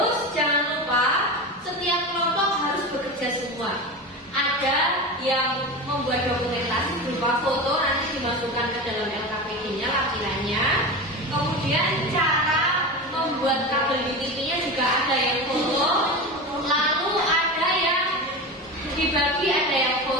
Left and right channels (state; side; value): normal; both; correlation 0.25